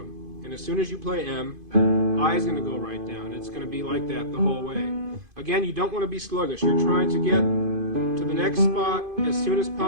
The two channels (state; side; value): late; left; 2.5 ms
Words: And as soon as you play M, I is going to go right down. It's going to be like that the whole way. Again, you don't want to be sluggish. You're trying to get to the next spot as soon as